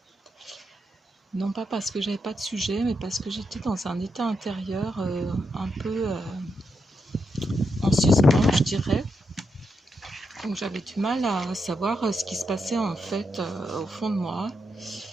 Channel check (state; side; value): normal; both; correlation 0.83